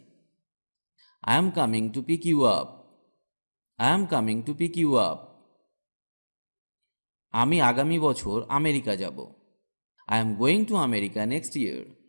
I am coming to pick you up. I am coming to pick you up. আমি আগামী বছর আমেরিকা যাব। I am going to America next year.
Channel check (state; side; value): inverted; both; correlation -1.00